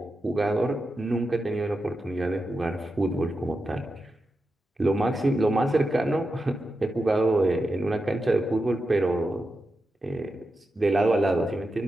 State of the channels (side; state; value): both; normal; correlation 0.89